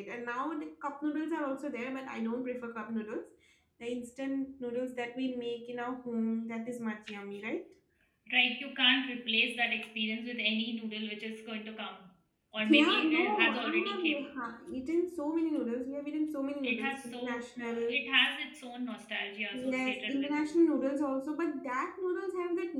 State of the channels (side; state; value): both; identical; correlation 1.00